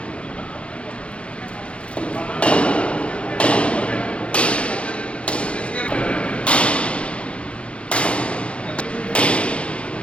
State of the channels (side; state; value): right; late; 0.060 ms